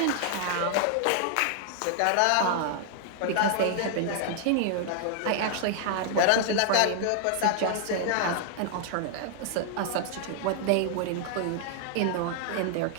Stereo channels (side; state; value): both; different; correlation 0.00